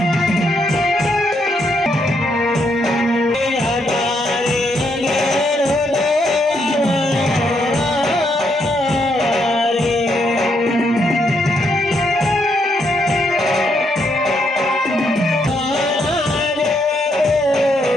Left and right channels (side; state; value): both; normal; correlation 0.76